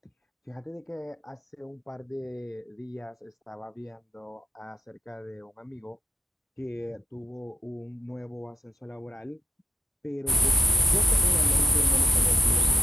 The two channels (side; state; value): both; normal; correlation 0.80